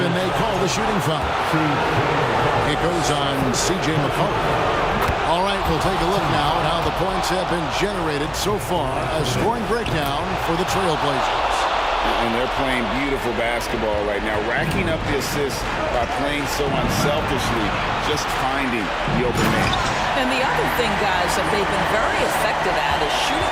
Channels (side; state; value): both; identical; correlation 1.00